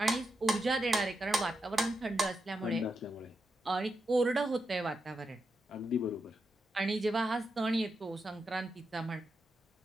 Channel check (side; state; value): both; normal; correlation 0.86